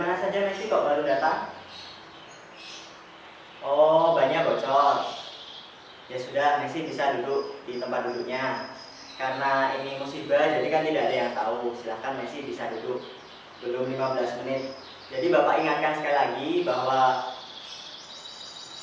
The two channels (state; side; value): identical; both; correlation 1.00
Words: saja Messi kok baru datang? Oh, banyak bocor. Ya sudah, Messi bisa duduk di tempat duduknya. Karena ini musibah, jadi kan tidak ada yang tahu. Silahkan Messi bisa duduk. Belum 15 menit. Jadi Bapak ingatkan sekali lagi bahwa